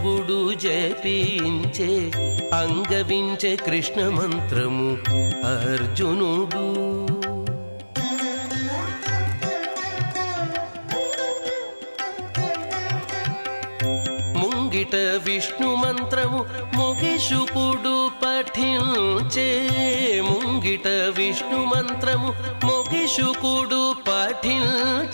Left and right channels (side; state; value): both; inverted; correlation -1.00